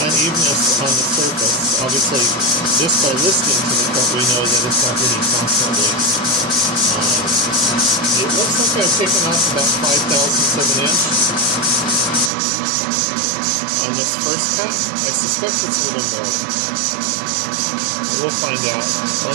unevenness on the surface. Obviously, just by listening to the cut, we know that it's not hitting constantly. It looks like I've taken off about 5/1000 of an inch on this first cut. I suspect it's a little more. We'll find out.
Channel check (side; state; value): left; drops out; at 12.3 s